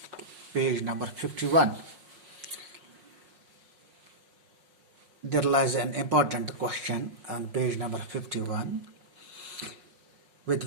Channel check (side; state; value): left; late; 5.5 ms